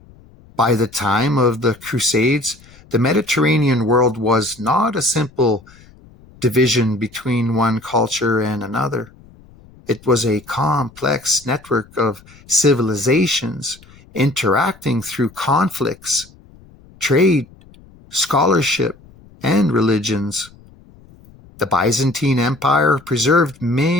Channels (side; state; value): left; noise; rumble, 25 dB below the sound